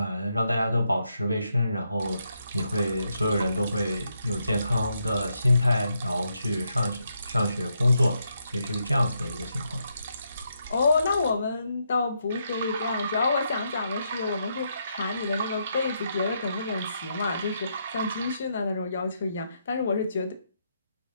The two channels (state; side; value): inverted; both; correlation -0.79